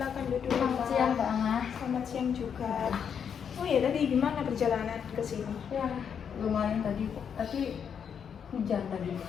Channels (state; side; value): quieter; right; 7.5 dB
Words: duduk. Selamat siang Mbak Ana. Selamat siang juga. Oh ya, tadi gimana perjalanan ke sini? Ya, lumayan tadi, tapi hujan tadi.